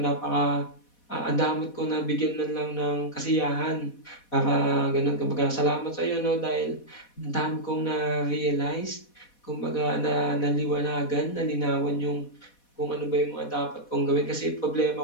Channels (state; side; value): late; right; 4.1 ms